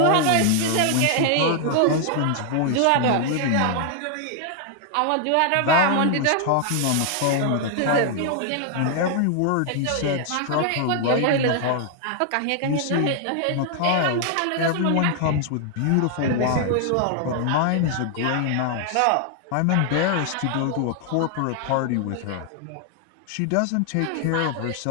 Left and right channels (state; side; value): different; both; correlation 0.00